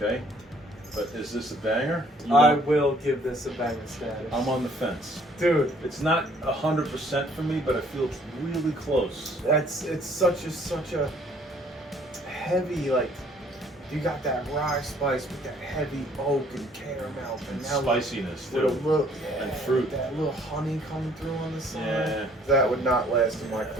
but is this a banger? I will give this a banger status. I'm on the fence. Dude, It's not 100% for me, but I feel it's really close. it's such a heavy, like, you got that rye spice with that heavy oak and caramel And now spiciness with a too. little And fruit. that little honey coming through on the side. Yeah. That would not last in my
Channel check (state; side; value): normal; both; correlation 0.60